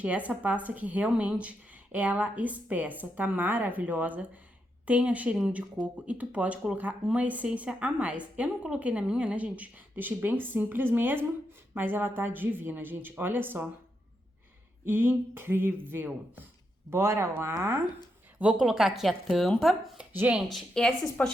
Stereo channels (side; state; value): both; normal; correlation 0.83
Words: E essa pasta que realmente ela espessa, tá maravilhosa, tem a cheirinho de coco e tu pode colocar uma essência a mais. Eu não coloquei na minha, né, gente? Deixei bem simples mesmo, mas ela tá divina, gente. Olha só. Incrível. Bora lá. Vou colocar aqui a tampa. Gente, esses